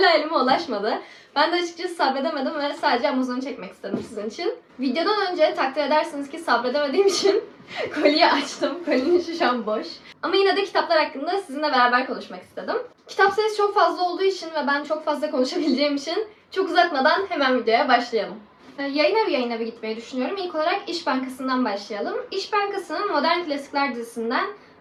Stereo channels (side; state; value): both; identical; correlation 1.00